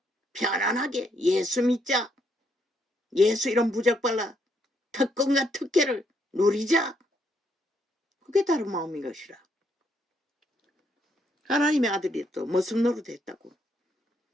편안하게 예수 믿자. 예수 이런 부적발라 특권과 특혜를 누리자. 그게 다른 마음인 것이라. 하나님의 아들이 또 무슨 노릇 했다고?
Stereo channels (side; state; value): both; normal; correlation 0.74